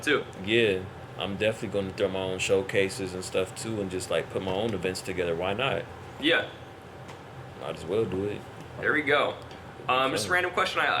too. Yeah. I'm definitely going to throw my own showcases and stuff too, and just like put my own events together. Why not? Yeah. Might as well do it. There we go. Just a random question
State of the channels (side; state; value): both; identical; correlation 1.00